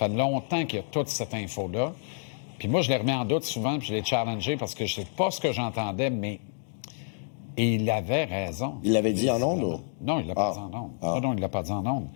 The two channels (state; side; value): silent; right; digital silence